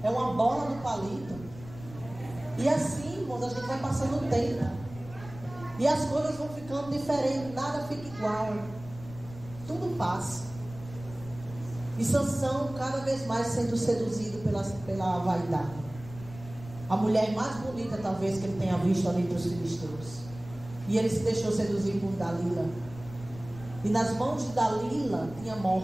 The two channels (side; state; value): left; noise; rumble, 16 dB below the sound